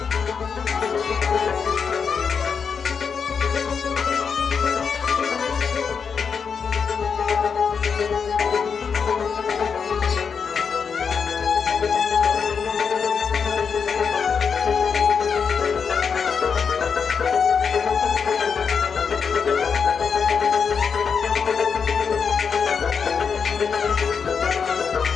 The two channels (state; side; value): quieter; right; 6.2 dB